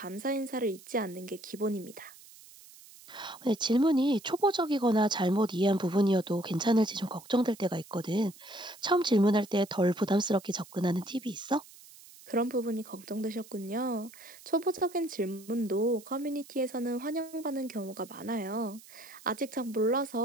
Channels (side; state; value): right; noise; hiss, 21 dB below the sound